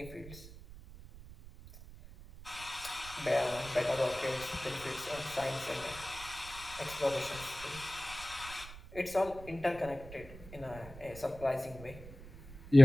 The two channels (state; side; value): noise; right; rumble, 16 dB below the sound